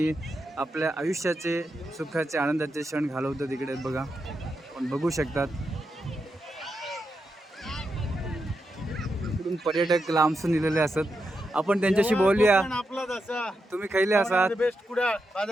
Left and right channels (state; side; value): normal; both; correlation 0.86